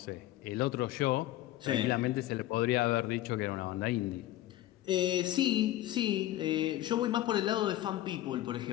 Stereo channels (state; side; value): quieter; right; 14.7 dB